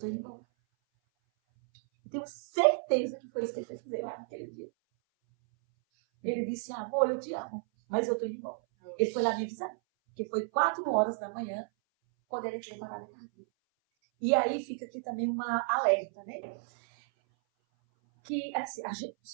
indo embora. Eu tenho certeza que foi isso que ele fez fazer lá naquele dia. Ele disse, amor, eu te amo, mas eu tô indo embora. Ele foi lá me avisar, porque foi 4 horas da manhã, quando ele entrou em parada cardíaca. E aí fica aqui também uma alerta, né? que assim,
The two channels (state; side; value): silent; left; 56 dB below the other